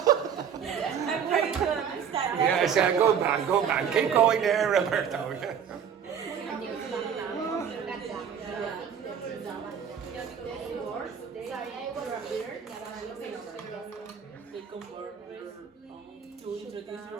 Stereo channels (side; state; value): left; quieter; 7.7 dB